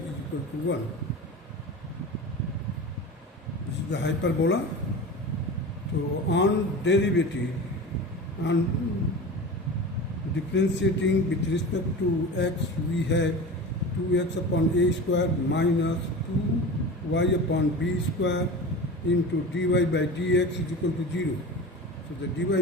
equal to 1. This is the hyperbola. So on derivative, on differentiating with respect to x, we have 2x upon a square minus 2y upon b square into dy by dx is equal to 0. So the dy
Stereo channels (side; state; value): both; normal; correlation 0.31